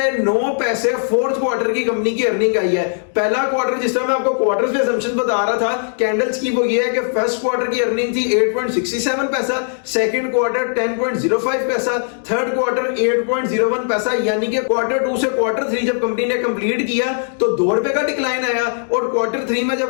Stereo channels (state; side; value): silent; right; digital silence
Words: 9 पैसे फोर्थ क्वार्टर की कंपनी की अर्निंग आई है। पहला क्वार्टर जिस तरह मैं आपको क्वार्टर्स पे असम्पशन बता रहा था कैंडल्स की वो ये है कि फर्स्ट क्वार्टर की अर्निंग थी 8.67 पैसा, सेकंड क्वार्टर 10.05 पैसा, थर्ड क्वार्टर 8.01 पैसा। यानी कि क्वार्टर 2 से क्वार्टर 3 जब कंपनी ने कंप्लीट किया तो 2 रुपए का डिक्लाइन आया और क्वार्टर 3 में